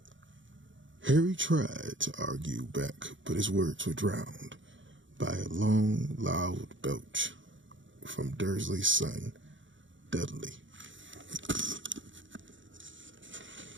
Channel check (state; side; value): late; left; 0.55 ms